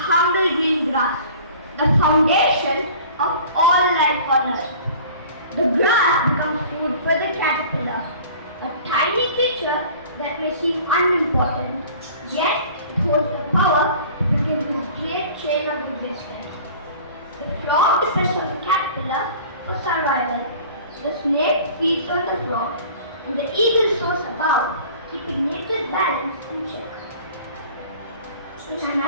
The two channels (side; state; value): both; inverted; correlation -0.45